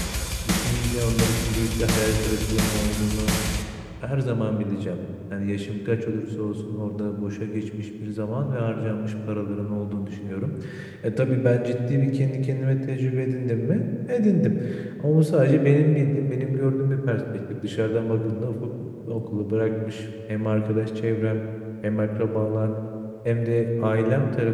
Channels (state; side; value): identical; both; correlation 1.00